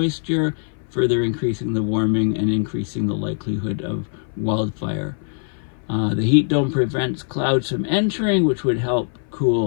further increasing the warming and increasing the likelihood of wildfire. The heat dome prevents clouds from entering, which would help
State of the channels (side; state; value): right; silent; 61 dB below the other